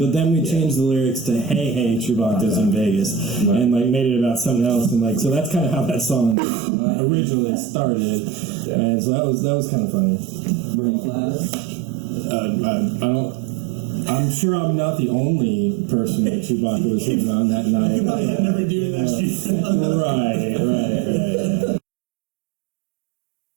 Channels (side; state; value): left; drops out; at 6.4 s